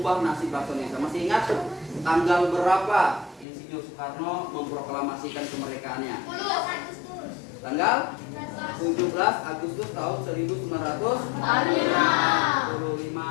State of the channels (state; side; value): drops out; right; at 3.5 s